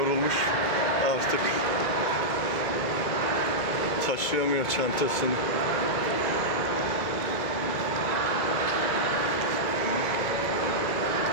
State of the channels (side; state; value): right; late; 2.2 ms